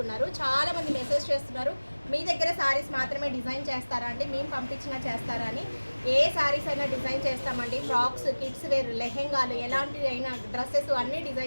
చాలా మంది మెసేజ్ చేస్తున్నారు, మీ దగ్గర సారీస్ మాత్రమే డిజైన్ చేస్తారా అండి, మేము పంపించినా చేస్తారా అని. ఏ సారీస్ అయినా డిజైన్ చేస్తామండి. ఫ్రాక్స్, కిడ్స్ వేర్, లెహెంగాలు, ఎలాంటి అయినా డ్రెస్సెస్ అన్నీ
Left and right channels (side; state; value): both; inverted; correlation -1.00